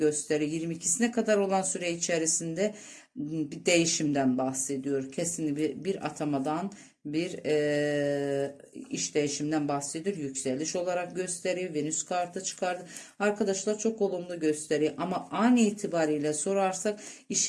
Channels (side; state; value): both; identical; correlation 1.00